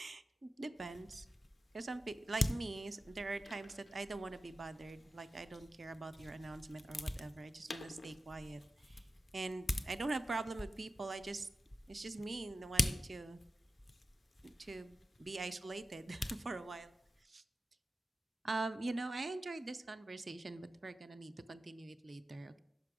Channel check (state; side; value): normal; both; correlation 0.94